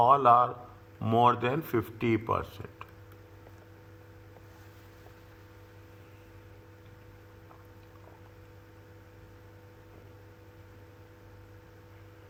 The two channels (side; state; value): both; identical; correlation 1.00